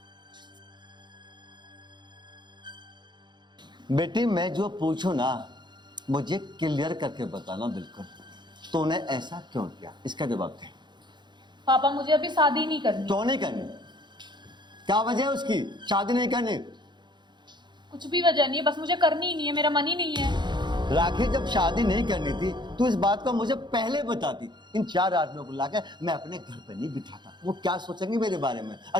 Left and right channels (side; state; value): left; late; 0.22 ms